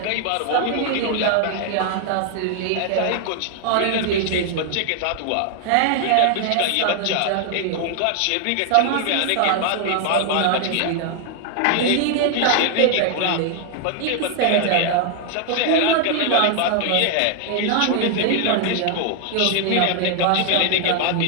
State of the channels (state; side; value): different; both; correlation 0.00